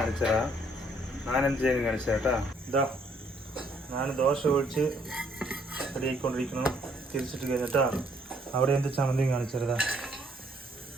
ഞാനെന്ത് ചെയ്യുന്നു കാണിച്ചു കേട്ടാ. ഇതാ ഞാൻ ദോശ ഒഴിച്ച് റെഡിയായിക്കൊണ്ടിരിക്കുന്നു. തിരിച്ചിട്ട് കഴിഞ്ഞിട്ടാ അവിടെ എന്ത് ചമ്മന്തി കാണിച്ചതാ.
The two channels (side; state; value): both; normal; correlation 0.66